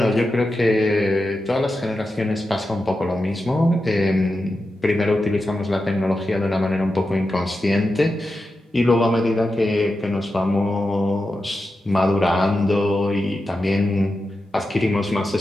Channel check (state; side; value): normal; both; correlation 0.90